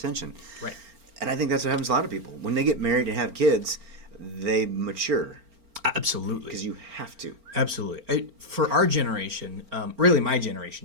Right. And I think that's what happens to a lot of people. When they get married and have kids, they mature. Absolutely. Because you have to. Absolutely. For our generation, really my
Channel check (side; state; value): left; late; 4.4 ms